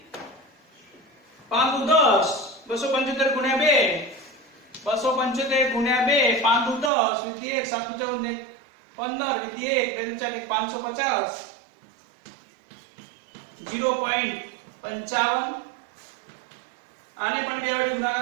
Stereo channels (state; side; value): drops out; left; at 6.9 s